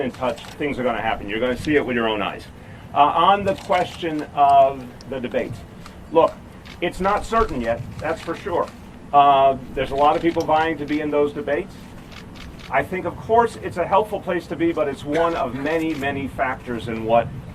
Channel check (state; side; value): identical; both; correlation 1.00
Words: in touch. Things are going to happen. You're going to see it with your own eyes. On the question of the debates, look, it's not certain yet, that's for sure. There's a lot of people vying to be in those debates. I think, of course, it's a helpful place to be, but it's one of many, many factors in what